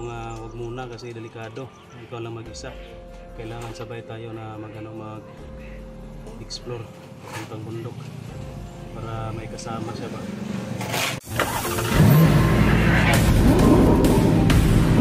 nga wag muna kasi delikado, ikaw lang mag-isa, kailangan sabay tayo na mag-explore papuntang bundok para may kasama siya ba.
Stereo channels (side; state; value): both; identical; correlation 1.00